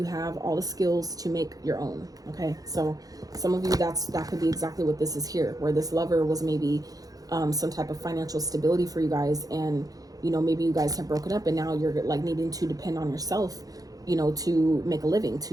have all the skills to make your own. Okay, so some of you, that could be exactly what this is here, where this lover was maybe some type of financial stability for you guys, and, you know, maybe you guys have broken up and now you're like needing to depend on yourself, you know, to make a living,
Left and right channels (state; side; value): late; left; 0.18 ms